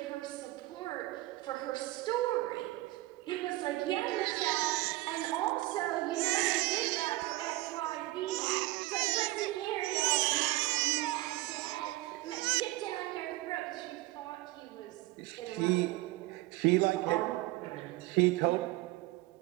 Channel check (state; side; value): quieter; left; 19.2 dB